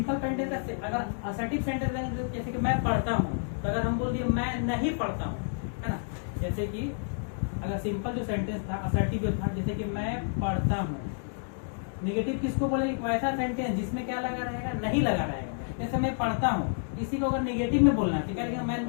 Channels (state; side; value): silent; right; digital silence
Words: सेंटेंस का अगर असर्टिव सेंटेंस लेंगे, जैसे कि मैं पढ़ता हूँ, तो अगर हम बोल दिए मैं नहीं पढ़ता हूँ, है ना। जैसे कि अगर सिंपल जो सेंटेंस था, असर्टिव जो था, जैसे कि मैं पढ़ता हूँ। नेगेटिव किसको बोलेंगे, वैसा सेंटेंस जिसमें क्या लगा रहेगा, नहीं लगा रहेगा। जैसे मैं पढ़ता हूँ, इसी को अगर नेगेटिव में बोलना है, क्या लिखेगा,